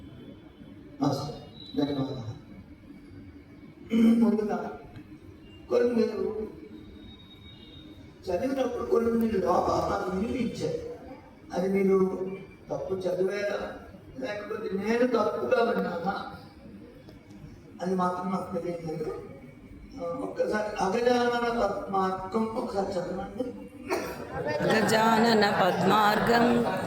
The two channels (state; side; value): identical; both; correlation 1.00